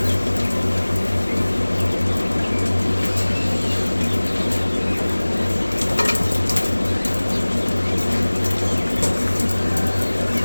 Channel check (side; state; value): both; inverted; correlation -1.00